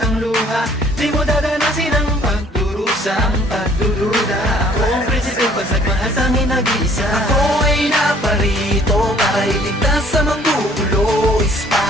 luha. Di mo dadanasin ang pagdurusang pagdududa. Ako ang prinsipe, pag nagmahal tanging nag-iisa. Ako ay naparito para iligtas sa manggugulo.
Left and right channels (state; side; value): normal; both; correlation 0.57